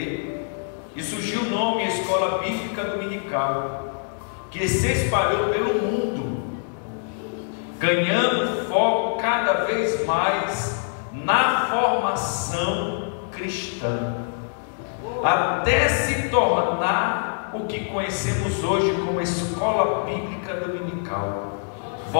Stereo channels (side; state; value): right; silent; digital silence